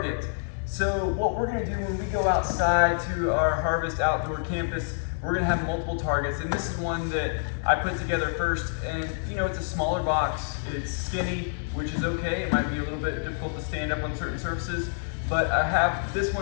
So what we're gonna do when we go outside to our Harvest outdoor campus, we're gonna have multiple targets, and this is one that I put together first, and you know, it's a smaller box, it's skinny, which is okay. It might be a little bit difficult to stand up on certain surfaces, but I have this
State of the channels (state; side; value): silent; right; digital silence